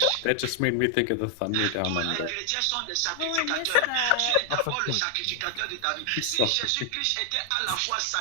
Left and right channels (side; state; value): both; different; correlation 0.00